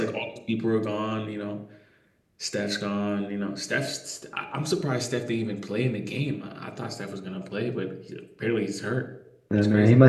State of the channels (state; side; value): identical; both; correlation 1.00